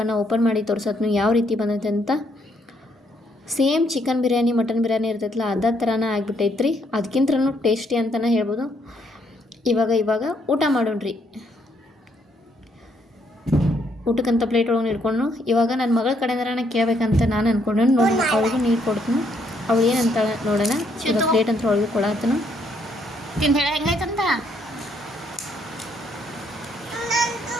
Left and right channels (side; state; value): both; normal; correlation 0.71